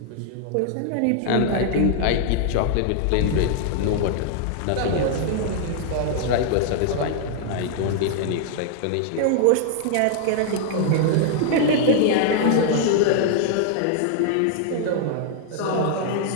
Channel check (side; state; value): both; different; correlation -0.01